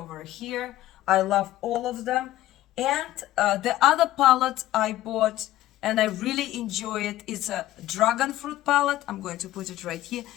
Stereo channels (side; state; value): right; quieter; 14.8 dB